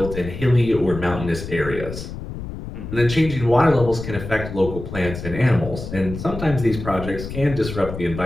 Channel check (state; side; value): noise; left; rumble, 9 dB below the sound